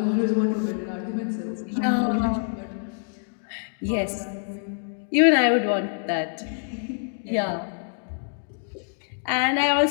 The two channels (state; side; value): silent; right; digital silence